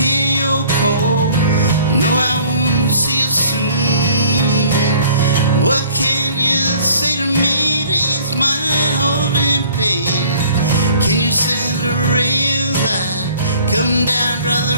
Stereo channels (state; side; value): inverted; both; correlation -0.53